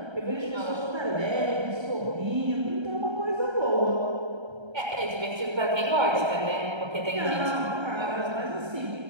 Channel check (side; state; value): left; late; 1.3 ms